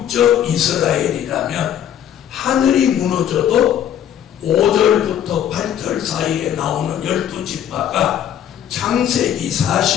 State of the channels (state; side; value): quieter; right; 10.1 dB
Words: 이스라엘이라면 하늘이 무너져도 5절부터 8절 사이에 나오는 12지파가 창세기